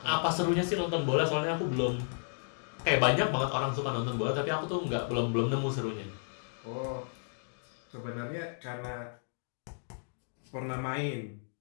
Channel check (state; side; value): silent; right; digital silence